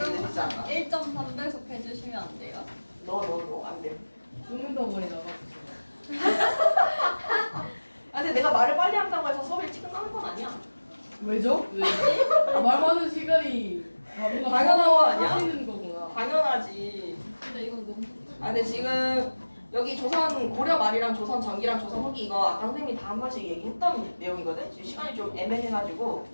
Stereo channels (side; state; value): both; inverted; correlation -1.00